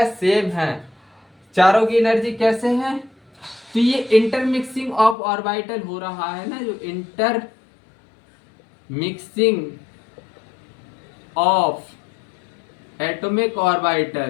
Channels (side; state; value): right; drops out; at 5.2 s